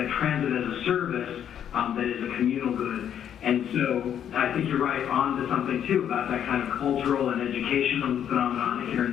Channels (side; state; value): right; quieter; 9.4 dB